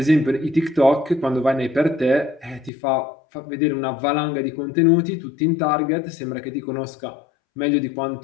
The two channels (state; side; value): drops out; right; at 2.7 s